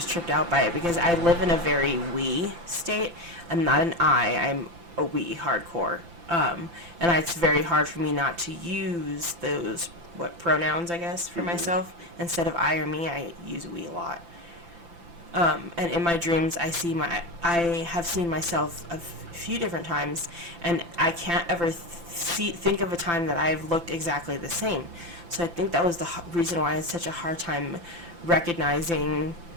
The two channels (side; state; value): left; late; 5.9 ms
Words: tripped out by it because I live in a very we state. I'm not an I'm a we hardcore. And it's very hard for me not to use those, pronouns, I guess, for myself. Instead of I or me, I use we a lot. And in my dreams, I have seen myself a few different times, and I can't ever think of a time that I've looked exactly the same. So I think that was the reason why I had such a hard time recognizing